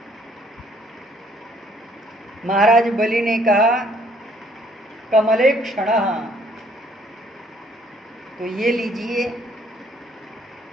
महाराज बलि ने कहा, कमले क्षणः। तो ये लीजिए।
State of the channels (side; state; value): both; normal; correlation 0.63